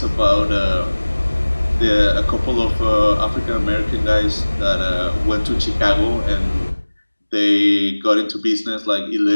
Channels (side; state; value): both; inverted; correlation -1.00